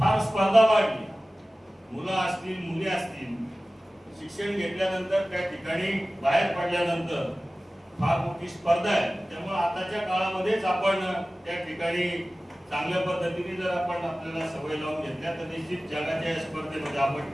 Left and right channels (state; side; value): normal; both; correlation 0.97